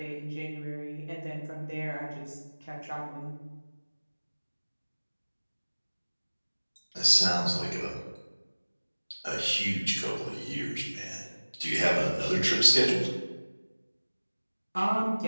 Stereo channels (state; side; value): inverted; both; correlation -1.00